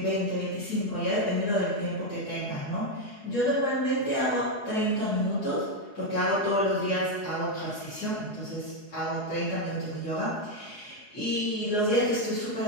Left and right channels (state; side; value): late; right; 4.8 ms